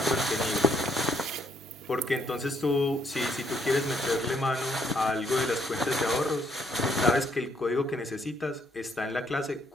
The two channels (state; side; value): normal; both; correlation 0.69